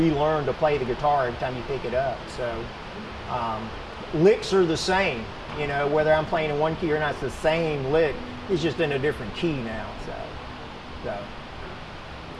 to play the guitar every time you pick it up. So licks are the same, you know, whether I'm playing in one key or not, it's the same lick. It's just in a different key now. So.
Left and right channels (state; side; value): identical; both; correlation 1.00